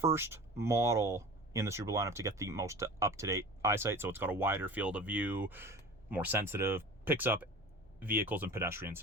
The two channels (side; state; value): both; normal; correlation 0.37